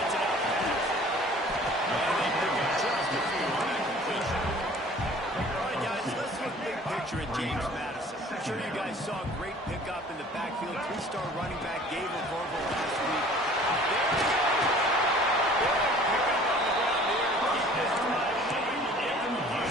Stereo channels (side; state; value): both; normal; correlation 0.49